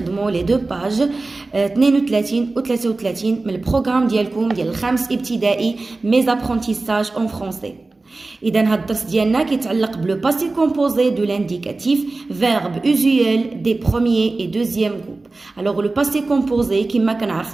لي دو باج 32 و 33 من البروغرام ديالكم ديال الخامس ابتدائي ميز ابرونتيساج اون فرونسي. اذا هاد الدرس ديالنا كيتعلق بلو باسي كومبوزي دو لانديكاتيف فيرب اوزيوال دي بروميير اي دوزيام جروب. الوغ لو باسي كومبوزي كما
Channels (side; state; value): left; quieter; 3.4 dB